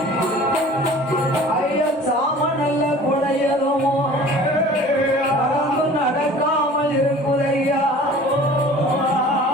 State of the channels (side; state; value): both; normal; correlation 0.45